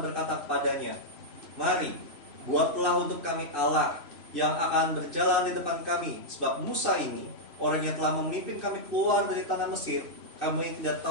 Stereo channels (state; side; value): late; left; 3.0 ms